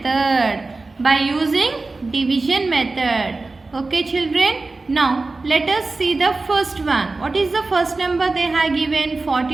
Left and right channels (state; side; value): quieter; left; 3.5 dB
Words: By using division method. Okay, children. Now let us see the first one. What is the first number they have given?